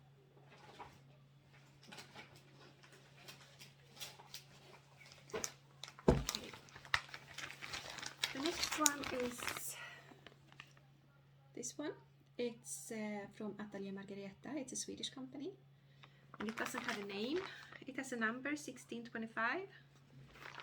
the next one is this one. It's from Atelier Margareta. It's a Swedish company. And it doesn't have a name. It has a number, 1625.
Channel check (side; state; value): both; identical; correlation 1.00